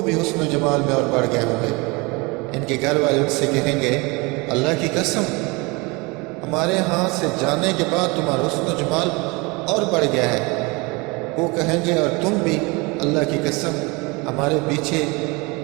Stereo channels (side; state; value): left; quieter; 26.7 dB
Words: بھی حسن و جمال میں اور بڑھ گئے ہوں گے۔ ان کے گھر والے ان سے کہیں گے، اللہ کی قسم، ہمارے ہاں سے جانے کے بعد تمہارا حسن و جمال اور بڑھ گیا ہے۔ وہ کہیں گے، اور تم بھی، اللہ کی قسم، ہمارے پیچھے